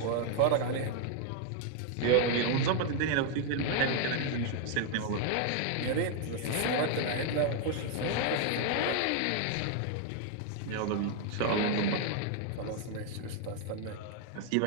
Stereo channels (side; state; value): both; different; correlation 0.00